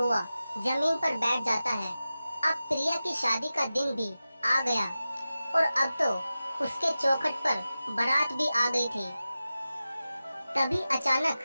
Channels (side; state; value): both; inverted; correlation -0.94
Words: जमीन पर बैठ जाता है। अब प्रिया की शादी का दिन भी आ गया और अब तो उसके चौखट पर बारात भी आ गई थी। तभी